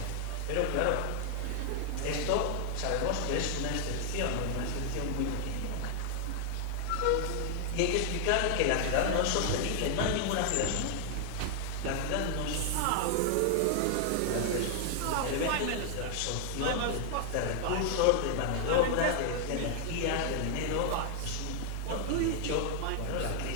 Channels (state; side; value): different; both; correlation 0.00